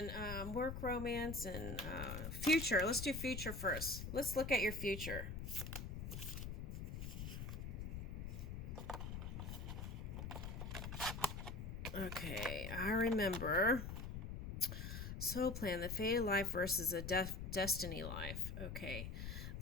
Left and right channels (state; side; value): noise; left; rumble, 5 dB below the sound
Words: future. Let's do future first. Let's look at your future. Okay, I remember. Soul plan, the fated life versus a destiny life. Okay.